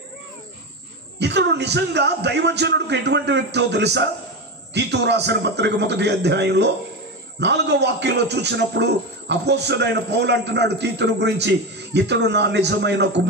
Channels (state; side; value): normal; both; correlation 0.18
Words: ఇతడు నిజంగా దైవజనుడికి ఎటువంటి వ్యక్తో తెలుసా? తీతు రాసిన పత్రిక 1వ అధ్యాయంలో 4వ వాక్యంలో చూసినప్పుడు అపోస్తలుడైన పౌలు అంటున్నాడు తీతును గురించి, ఇతడు నా నిజమైన